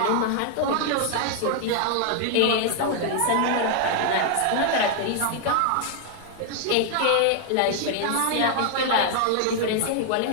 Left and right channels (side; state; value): both; different; correlation 0.00